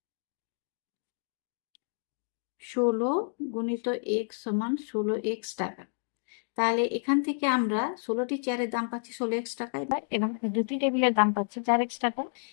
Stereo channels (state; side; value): silent; right; digital silence